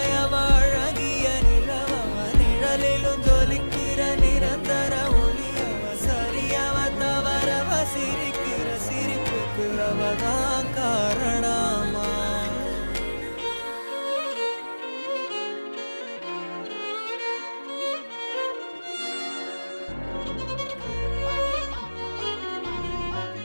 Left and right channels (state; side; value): inverted; both; correlation -1.00